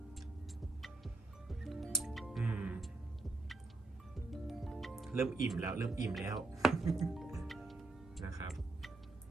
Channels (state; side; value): quieter; left; 3.1 dB